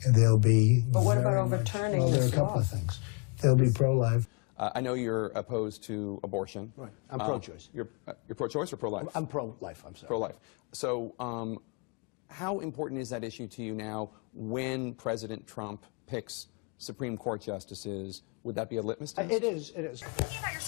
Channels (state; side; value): quieter; right; 34.0 dB